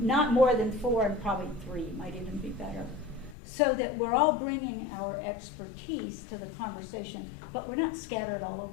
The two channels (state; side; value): drops out; right; at 3.4 s